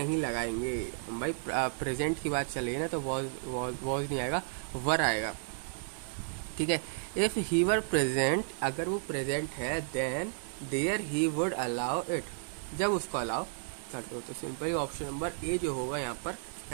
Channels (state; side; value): silent; left; 56 dB below the other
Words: लगाएंगे भाई, प्रेजेंट की बात चल रही है ना, तो वॉज नहीं आएगा, वर आएगा, ठीक है। इफ़ ही वर प्रेजेंट, अगर वो प्रेजेंट है, then there he would allow it, जब उसको अलाउ करते हो, तो सिंपली ऑप्शन नंबर ए जो होगा यहाँ पर